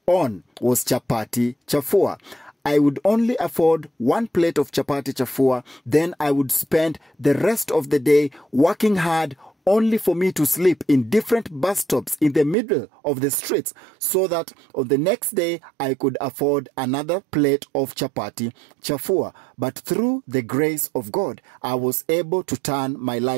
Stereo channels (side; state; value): left; drops out; at 12.6 s